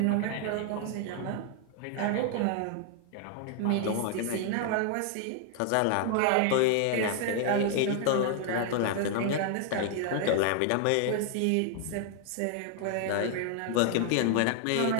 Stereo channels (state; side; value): different; both; correlation 0.00